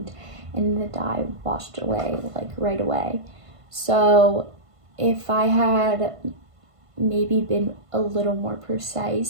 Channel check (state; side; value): late; left; 1.5 ms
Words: and the dye washed away like right away. So if I had maybe been a little more